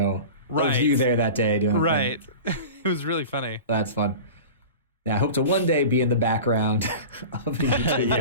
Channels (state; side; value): inverted; both; correlation -0.34